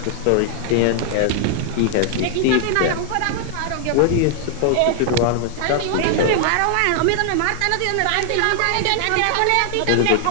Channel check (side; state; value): both; different; correlation 0.00